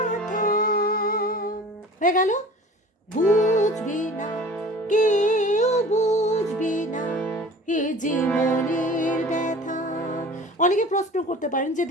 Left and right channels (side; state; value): both; normal; correlation 0.43